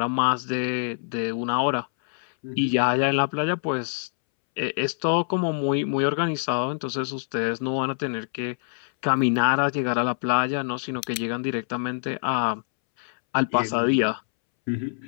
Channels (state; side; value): silent; right; 62 dB below the other